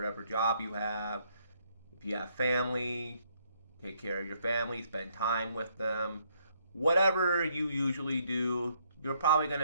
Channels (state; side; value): inverted; both; correlation -0.71